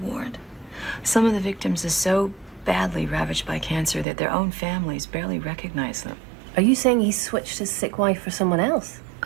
Some of the victims are so badly ravaged by cancer that their own families barely recognize them. Are you saying he switched his sick wife for someone else?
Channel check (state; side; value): drops out; left; at 4.0 s